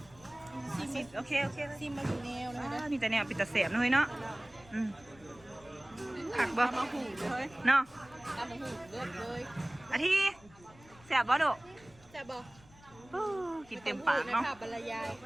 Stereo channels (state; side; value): noise; left; rumble, 24 dB below the sound